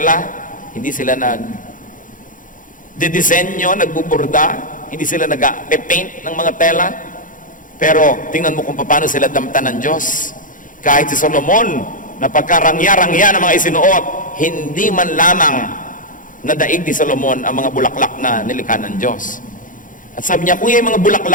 hindi sila nagdidisenyo, nagbuburda, hindi sila nag-paint ng mga tela. Pero tingnan mo kung paano sila damtan ng Diyos. Kahit si Solomon, na pagkarangya-rangya ng mga isinuot, hindi man lamang nadaig ni Solomon ang mga bulaklak na nilikha ng Diyos. At sabi niya, kung yung mga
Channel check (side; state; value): right; late; 0.38 ms